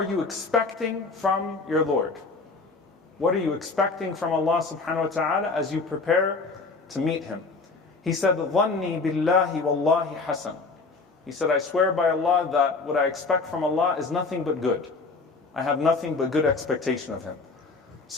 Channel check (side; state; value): right; quieter; 4.0 dB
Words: you expecting from your Lord? What are you expecting from Allah subhanahu wa ta'ala as you prepare to meet Him? He said, ظَنِّي بِاللَّهِ وَاللَّهِ حَسَنٌ. He said, I swear by Allah that what I expect from Allah is nothing but good. I have nothing but good expectation of Him.